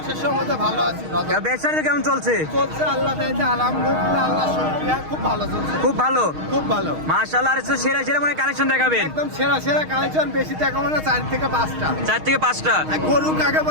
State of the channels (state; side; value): late; left; 6.4 ms